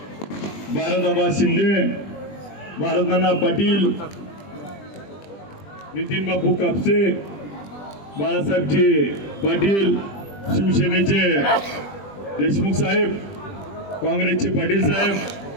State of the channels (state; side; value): late; right; 20 ms